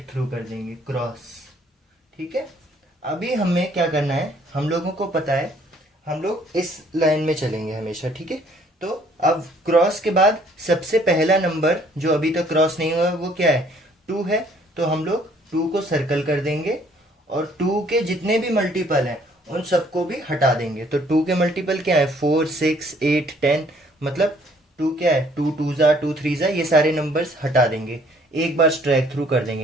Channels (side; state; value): both; normal; correlation 0.61